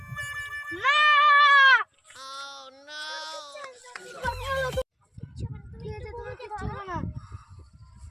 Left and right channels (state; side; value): identical; both; correlation 1.00